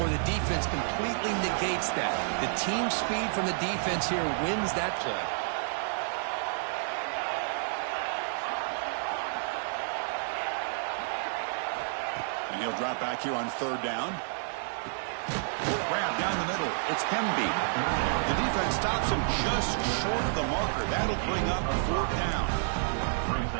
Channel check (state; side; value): silent; left; 56 dB below the other